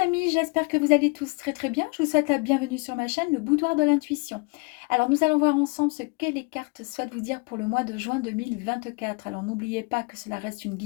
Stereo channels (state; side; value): quieter; right; 31.5 dB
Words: j'espère que vous allez tous très bien. Je vous souhaite la bienvenue sur ma chaîne, le Boudoir de l'intuition. Alors nous allons voir ensemble ce que les cartes souhaitent vous dire pour le mois de juin 2024. Alors n'oubliez pas que cela reste une